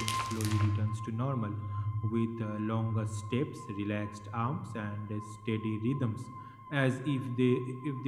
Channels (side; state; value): both; identical; correlation 1.00